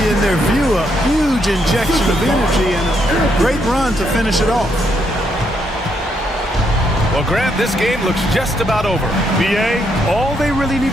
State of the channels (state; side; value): normal; both; correlation 0.76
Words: in their view, a huge injection of energy and a great run to finish it off. Well, Grant, this game looks just about over. BA, all they really need